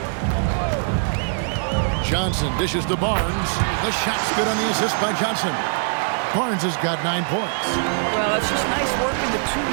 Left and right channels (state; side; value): silent; left; digital silence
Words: Johnson dishes to Barnes. The shot's good on the assist by Johnson. Barnes has got 9 points. Well, it's just nice work in the